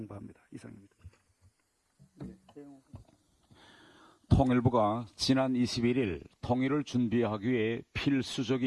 이상입니다. 통일부가 지난 21일 통일을 준비하기 위해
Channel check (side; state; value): both; identical; correlation 1.00